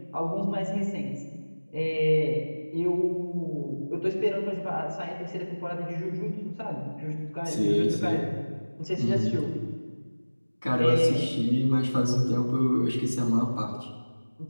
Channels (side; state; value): both; inverted; correlation -1.00